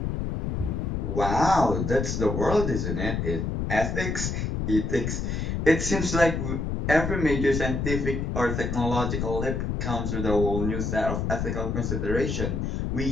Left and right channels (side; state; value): left; noise; rumble, 1 dB below the sound